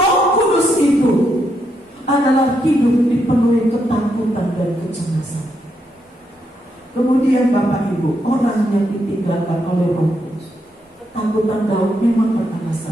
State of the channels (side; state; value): both; normal; correlation 0.79